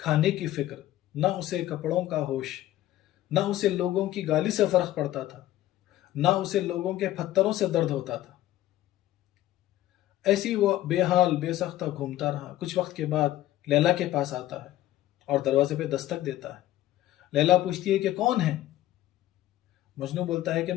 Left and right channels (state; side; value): quieter; right; 14.4 dB